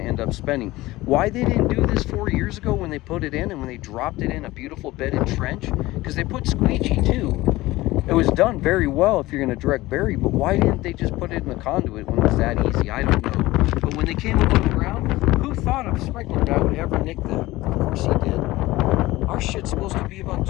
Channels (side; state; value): right; quieter; 18.5 dB